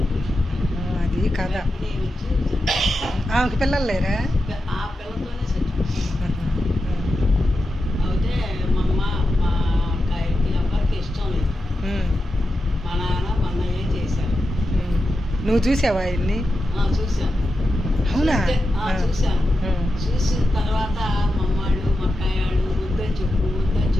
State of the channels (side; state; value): both; normal; correlation 0.90